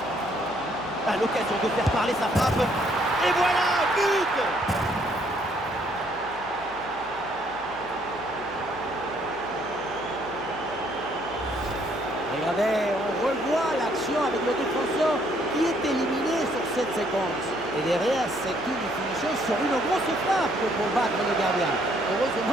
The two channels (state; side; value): noise; right; hum, 23 dB below the sound